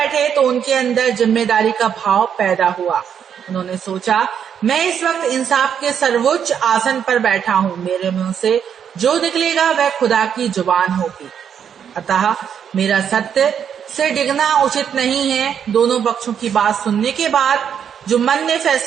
तो उनके अंदर जिम्मेदारी का भाव पैदा हुआ। उन्होंने सोचा, मैं इस वक्त इंसाफ के सर्वोच्च आसन पर बैठा हूँ, मेरे मुंह से जो निकलेगा वह खुदा की जुबान होगी, अतः मेरा सत्य से डिगना उचित नहीं है। दोनों पक्षों की बात सुनने के बाद जुम्मन ने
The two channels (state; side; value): quieter; left; 8.2 dB